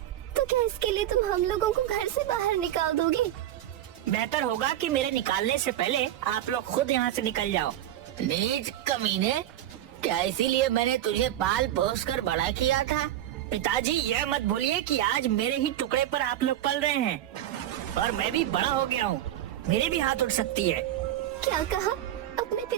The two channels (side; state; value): left; quieter; 12.6 dB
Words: तो क्या इसके लिए तुम हम लोगों को घर से बाहर निकाल दोगे? बेहतर होगा कि मेरे निकालने से पहले आप लोग खुद यहाँ से निकल जाओ। नीच कमीने, क्या इसीलिए मैंने तुझे पाल पोस कर बड़ा किया था? पिताजी, यह मत भूलिए कि आज मेरे ही टुकड़े पर आप लोग पल रहे हैं और मैं भी बड़ा हो गया हूँ। मेरे भी हाथ उठ सकती है। क्या कहा? अपने